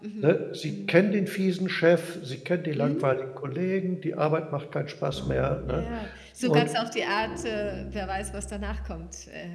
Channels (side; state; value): both; identical; correlation 1.00